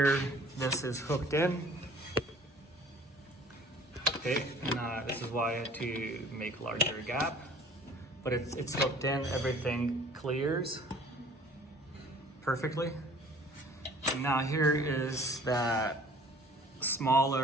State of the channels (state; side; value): normal; both; correlation 0.51